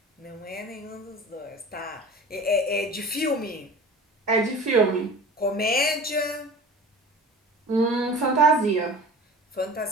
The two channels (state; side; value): normal; both; correlation 0.39